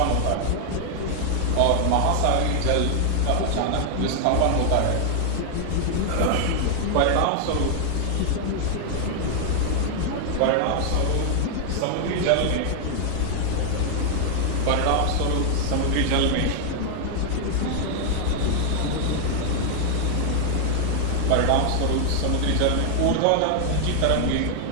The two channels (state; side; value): different; both; correlation 0.00